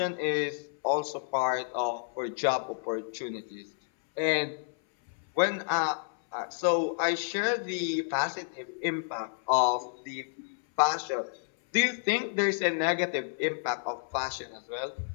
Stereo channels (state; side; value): silent; right; 58 dB below the other